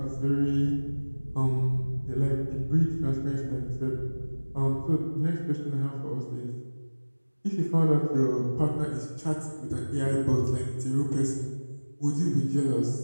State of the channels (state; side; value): inverted; both; correlation -1.00